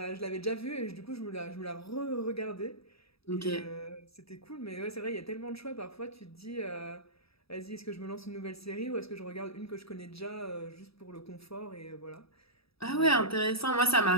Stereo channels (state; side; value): late; right; 0.77 ms